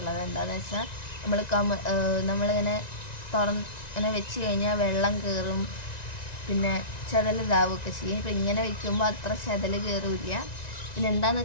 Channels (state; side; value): late; right; 1.9 ms